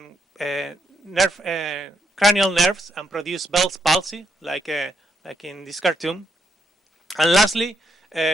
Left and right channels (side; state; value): both; normal; correlation 0.78